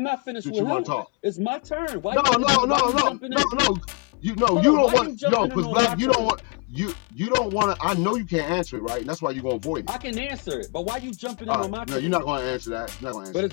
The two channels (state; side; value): quieter; right; 31.0 dB